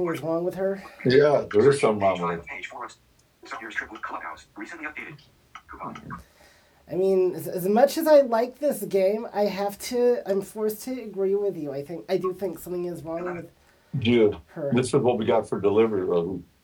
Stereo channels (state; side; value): identical; both; correlation 1.00